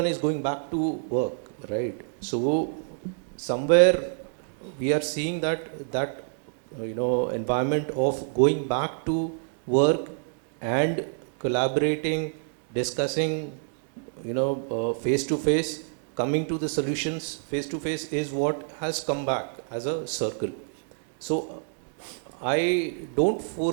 is going back to work, right? So somewhere we are seeing that environment of going back to work and collaborating, discussing, face to face, coming to the solutions face to face is what has come back as a circle. So I don't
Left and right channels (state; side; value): silent; left; digital silence